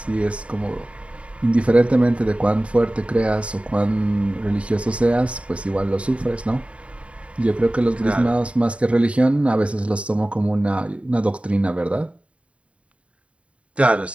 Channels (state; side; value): late; left; 0.063 ms